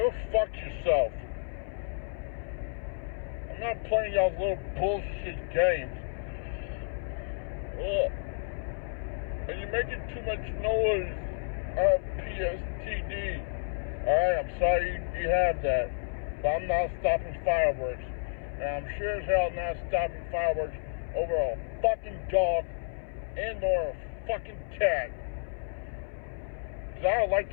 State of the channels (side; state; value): right; silent; 57 dB below the other